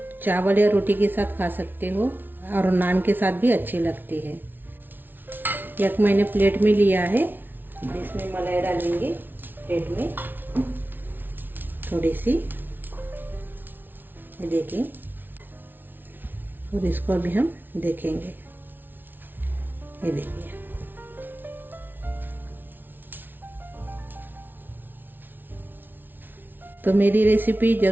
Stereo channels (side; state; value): left; late; 0.093 ms